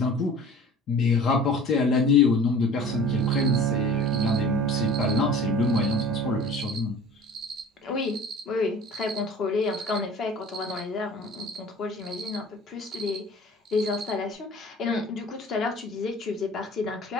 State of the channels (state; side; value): normal; both; correlation 0.44